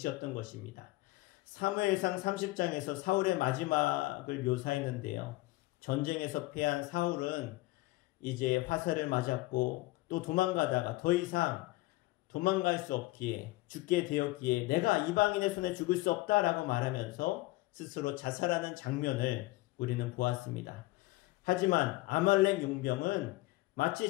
것입니다. 사무엘상 30장에서 사울의 마지막을 묘사했는데요. 전쟁에서 패한 사울은 이제 화살을 맞았고 또 도망가다가 더 이상 도망갈 수 없기에, 죽게 되었기에 내가 이방인의 손에 죽을 수 없다라고 말하면서 스스로 자살하는 장면을 우리는 보았습니다. 하지만 아말렉 용병은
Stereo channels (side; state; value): right; quieter; 20.1 dB